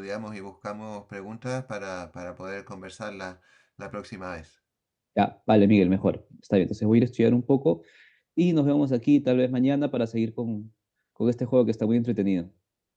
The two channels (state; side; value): identical; both; correlation 1.00